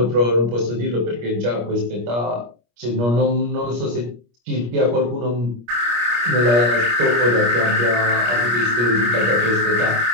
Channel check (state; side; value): late; left; 25 ms